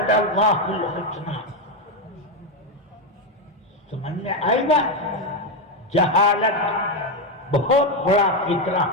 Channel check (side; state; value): both; normal; correlation 0.07